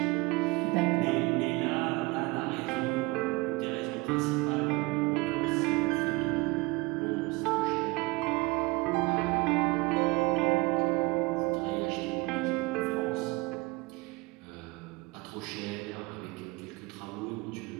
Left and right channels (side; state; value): left; quieter; 23.6 dB